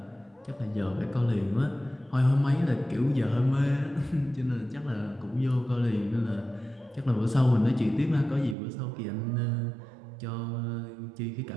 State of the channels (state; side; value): drops out; left; at 8.6 s